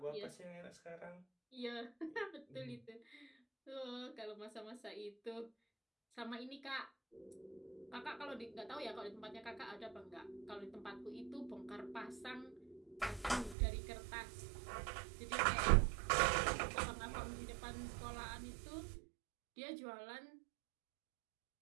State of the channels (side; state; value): left; drops out; at 13.6 s